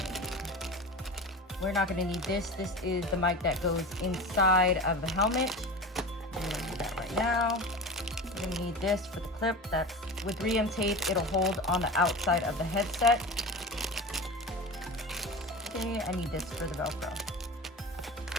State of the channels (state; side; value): normal; both; correlation 0.30